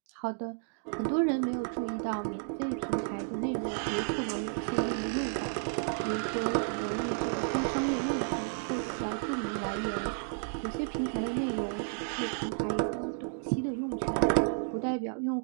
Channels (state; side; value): silent; left; 56 dB below the other